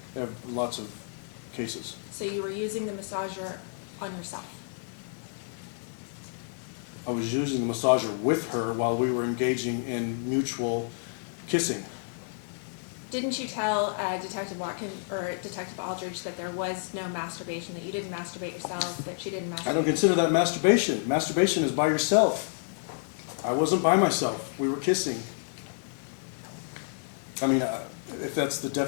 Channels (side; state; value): right; silent; 58 dB below the other